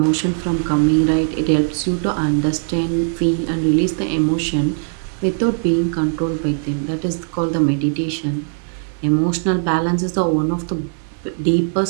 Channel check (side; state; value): left; silent; digital silence